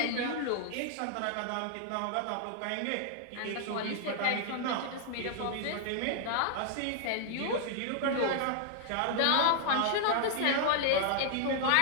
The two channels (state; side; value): different; both; correlation 0.00